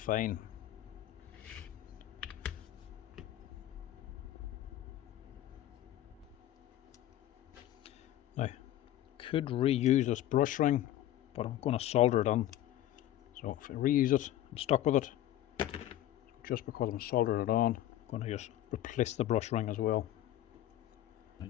Now, could reuse this brush ring, but I'm going to solder it on. So if I reuse it, I'm stuck with it. So just because I'm soldering it on, I'm going to just replace the brush ring as well.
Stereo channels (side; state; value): right; quieter; 13.2 dB